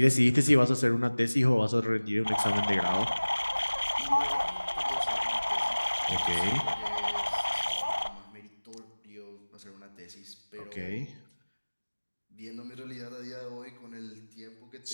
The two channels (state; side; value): inverted; both; correlation -1.00